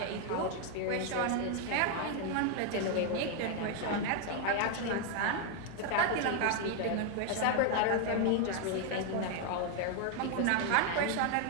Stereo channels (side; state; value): both; different; correlation 0.00